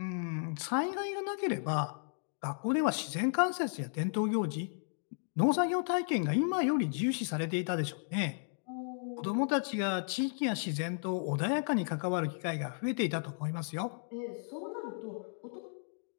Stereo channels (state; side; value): silent; right; digital silence